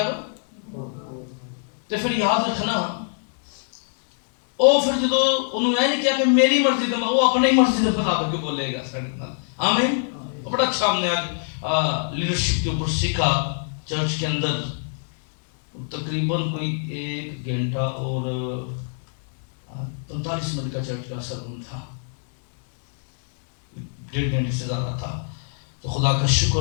تے پھر یاد رکھنا او پھر جدو انہوں نے نہیں کیا کہ میری مرضی دا, وہ اپنی مرضی دے مطابق بولے گا ساڈے نال. آمین. بڑا اچھا ہم نے آج لیڈرشپ کے اوپر سیکھا چرچ کے اندر. تقریباً کوئی 1 گھنٹہ اور 45 منٹ کا چرچ کا سرمن تھا, 1.5 گھنٹے سے زیادہ تھا. تو خدا کا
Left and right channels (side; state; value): right; silent; digital silence